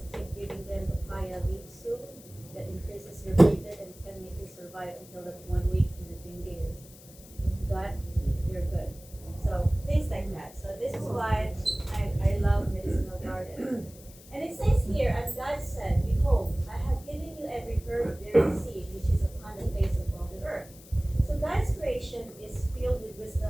keep giving them papaya leaf soup that increases your platelet and can make you survive until that 1 week when the dengue is gone, you're good. So things like that. So this is why I love medicinal garden. And it says here, and God said, behold, I have given you every herb bearing seed which is upon the face of all the earth. So God's creation is filled with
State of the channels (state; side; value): noise; left; hiss, 21 dB below the sound